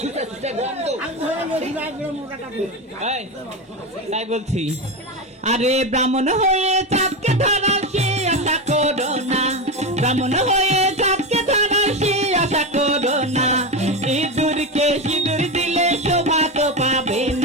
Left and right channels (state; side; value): normal; both; correlation 0.16